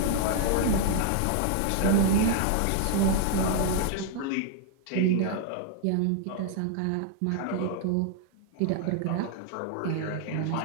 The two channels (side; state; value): both; different; correlation -0.01